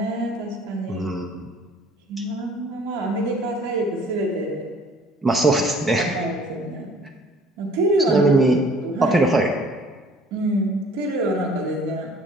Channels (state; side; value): normal; both; correlation 0.54